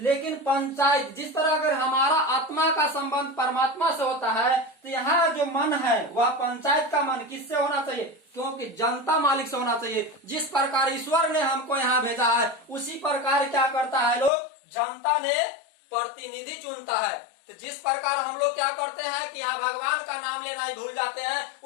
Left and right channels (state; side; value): drops out; right; at 14.3 s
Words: पंचायत, जिस तरह अगर हमारा आत्मा का संबंध परमात्मा से होता है, तो यहाँ जो मन है वह पंचायत का मन किससे होना चाहिए, क्योंकि जनता मालिक से होना चाहिए। जिस प्रकार ईश्वर ने हमको यहाँ भेजा है, उसी प्रकार क्या करता है लोग, जनता ने प्रतिनिधि चुनता है। तो जिस प्रकार हम लोग क्या करते हैं कि यहाँ भगवान का नाम लेना ही भूल जाते हैं,